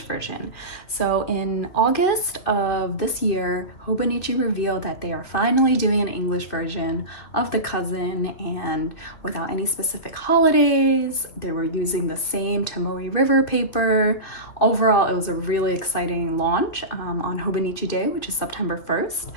version. So in August of this year, Hobonichi revealed that they are finally doing an English version of the Cousin, and without any specific holidays. They were using the same Tomoe River paper. Overall, it was a really exciting launch on Hobonichi Day, which is September 1st.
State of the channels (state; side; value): late; right; 2.9 ms